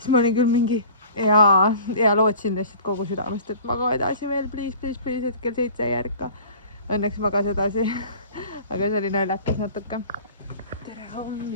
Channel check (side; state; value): both; inverted; correlation -0.44